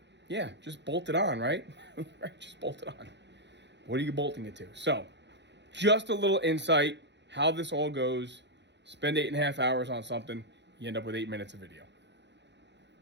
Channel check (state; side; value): late; left; 0.51 ms